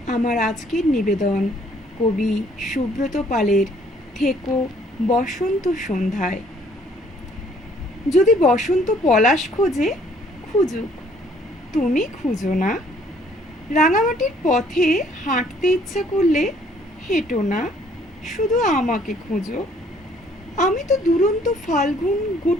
আমার আজকের নিবেদন কবি সুব্রত পালের থেকো বসন্ত সন্ধ্যায়। যদি বসন্ত পলাশ খোঁজে, খুঁজুক, তুমি খুঁজো না। রাঙামাটির পথে হাঁটতে ইচ্ছা করলে হেঁটো না, শুধু আমাকে খোঁজো। আমি তো দুরন্ত ফাল্গুন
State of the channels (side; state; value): both; normal; correlation 0.61